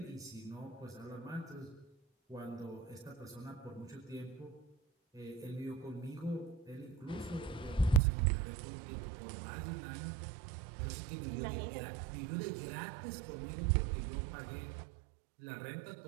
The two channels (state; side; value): drops out; left; at 8.0 s